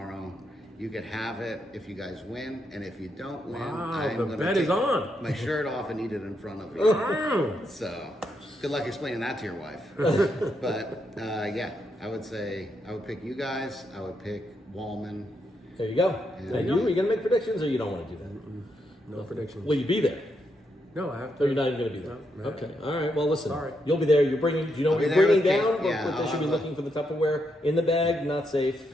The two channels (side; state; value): both; normal; correlation 0.80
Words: You could have it if you guys win, and if you don't win, Wow, I'm the gonna bet take is on. my shirt off and eat it in front of you. Oh. So, good luck explaining that to your wife. But yeah, I would say I would pick you guys. I would pick Wallman. There you go. There And you you go. are you gonna make predictions, or you don't want to do that? No predictions. Will you be there? No, I have Or to. you're not even going to be there? No, no. Okay. All right. Well, listen. Sorry. You'll be there. You're bringing. Do you know I'll what be you're there bringing with down? cake. Yeah, What they I'll should be have looking for the Tupperware in the bag, not safe.